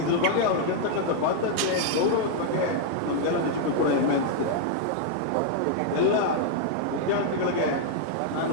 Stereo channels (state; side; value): different; both; correlation -0.01